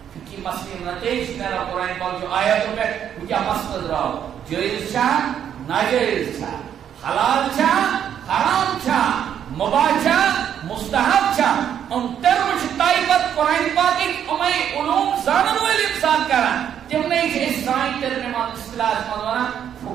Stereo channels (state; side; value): quieter; left; 9.2 dB